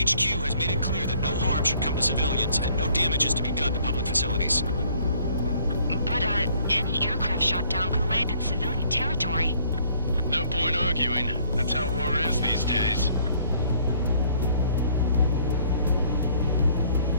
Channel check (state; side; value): inverted; both; correlation -0.55